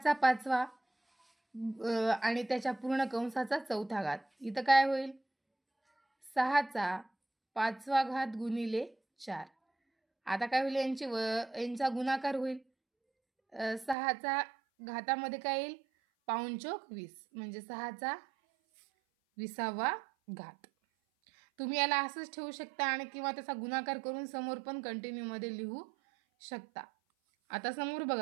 5वा आणि त्याच्या पूर्ण कंसाचा चौथा घात। इथं काय होईल? 6चा 5वा घात गुणिले 4। आता काय होईल? यांचा गुणाकार होईल। 6चा घातामध्ये काय येईल? पाऊण चौक 20, म्हणजे 6चा 20वा घात। तुम्ही याला असंच ठेवू शकता आणि किंवा त्याचा गुणाकार करून समोर पण कंटिन्यू मध्ये लिहू शकता। आता समोर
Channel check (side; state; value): left; drops out; at 14.0 s